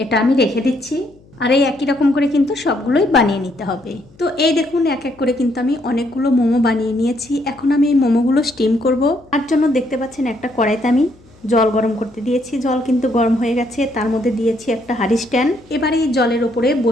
আমি রেখে দিচ্ছি। আর এই একই রকম করে কিন্তু সবগুলোই বানিয়ে নিতে হবে। তো এই দেখুন এক এক করে কিন্তু আমি অনেকগুলো মোমো বানিয়ে নিয়েছি। এখন আমি এই মোমোগুলো স্টিম করব। তার জন্য দেখতে পাচ্ছেন একটা কড়াইতে আমি জল গরম করতে দিয়েছি। জল কিন্তু গরম হয়ে গেছে, তার মধ্যে দিয়েছি একটা হাঁড়ি স্ট্যান্ড। এবারে এই জলের ওপরে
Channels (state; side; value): noise; left; hum, 27 dB below the sound